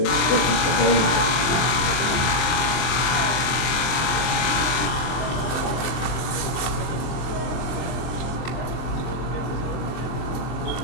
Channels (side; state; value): right; late; 24 ms